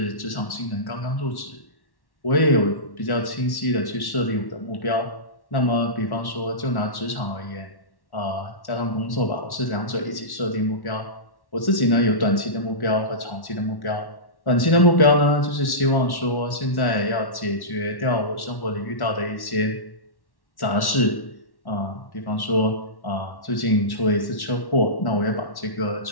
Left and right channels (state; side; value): late; right; 1.1 ms